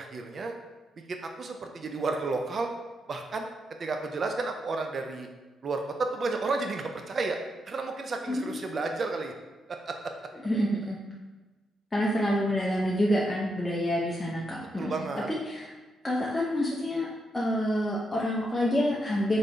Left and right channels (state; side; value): normal; both; correlation 0.82